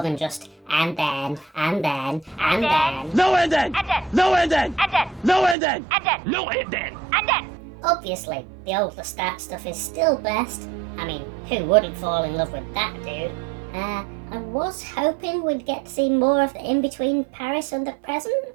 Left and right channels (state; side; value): drops out; left; at 5.6 s